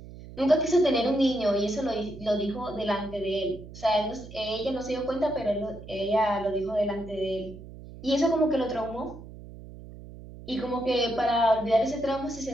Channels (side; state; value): right; noise; hum, 15 dB below the sound